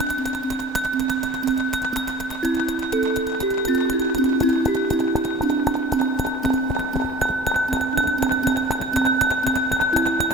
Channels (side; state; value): both; normal; correlation 0.44